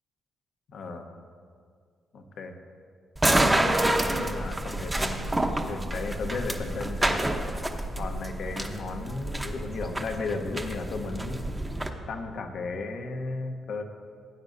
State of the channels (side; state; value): both; normal; correlation 0.90